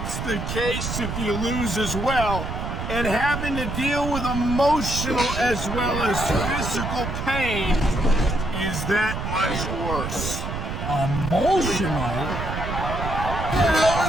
the case if you lose as well. And having to deal with emotional as well as physical pain is that much worse. Emotional? What the hell are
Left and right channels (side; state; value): right; noise; rumble, 4 dB below the sound